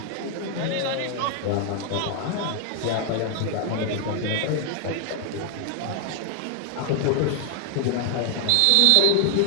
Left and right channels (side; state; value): both; different; correlation 0.00